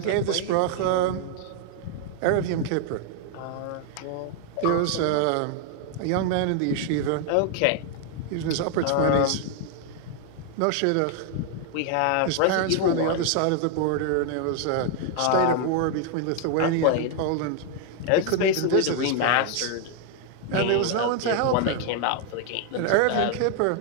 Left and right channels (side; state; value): both; different; correlation 0.00